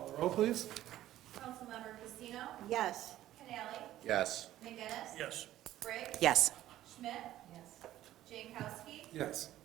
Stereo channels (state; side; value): quieter; left; 13.7 dB